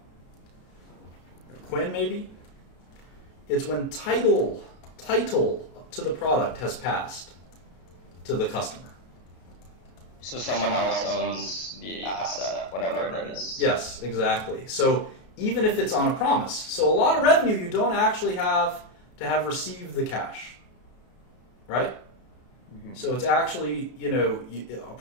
Quinn, maybe? It's when title to the product has passed to the customer. So someone else owns the asset, whatever it is. Yes, exactly. So even if it's on a promise. So a lot of revenue you don't actually have to have received the cash. Right? Mm-hmm. So it's actually, a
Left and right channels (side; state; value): right; late; 33 ms